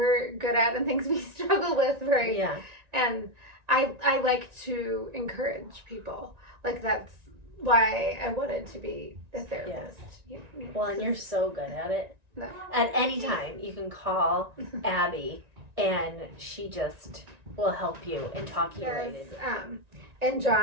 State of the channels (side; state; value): left; late; 1.9 ms